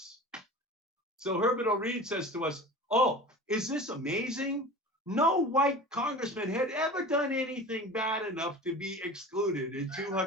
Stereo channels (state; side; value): normal; both; correlation 0.36